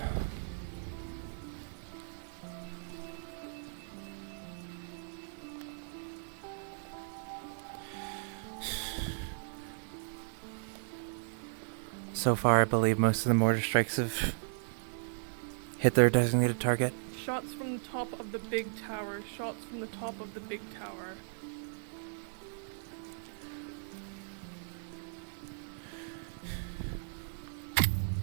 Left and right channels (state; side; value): silent; left; digital silence